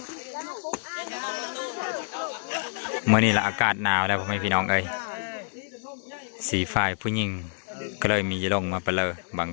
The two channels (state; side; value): silent; right; digital silence